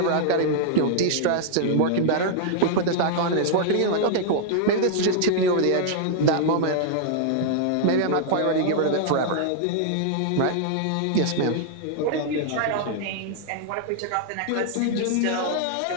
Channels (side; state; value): both; different; correlation -0.01